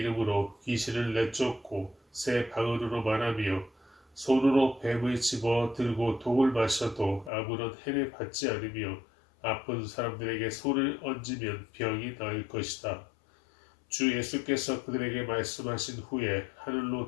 귀신을 내쫓고 새 방언으로 말하며 손으로 뱀을 집어 들고 독을 마셔도 아무런 해를 받지 않으며 아픈 사람들에게 손을 얹으면 병이 나을 것이다. 주 예수께서 그들에게 말씀하신 후에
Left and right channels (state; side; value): drops out; right; at 7.3 s